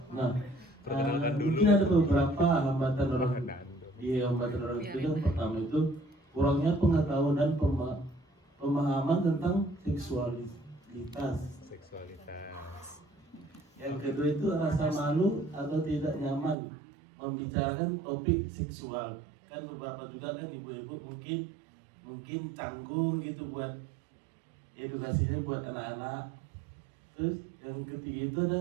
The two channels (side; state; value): left; drops out; at 16.6 s